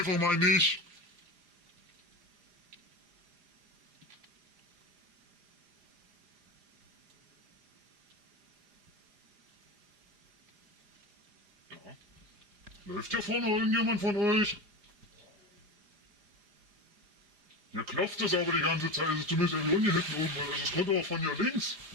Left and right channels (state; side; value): late; left; 4.9 ms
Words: mal nicht. Ja. Läuft hier vorne irgendjemand von euch? Hier klopft es aber die ganze Zeit, also zumindest irgendwie hier hinten oben, also es kommt aber von hier links.